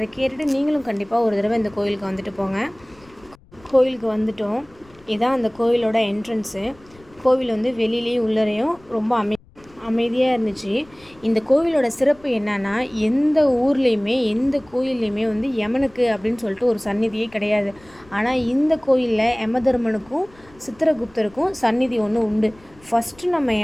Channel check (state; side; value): noise; left; rumble, 27 dB below the sound